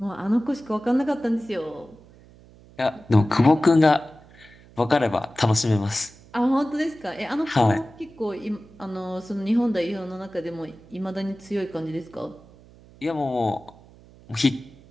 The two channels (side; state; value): right; noise; hum, 24 dB below the sound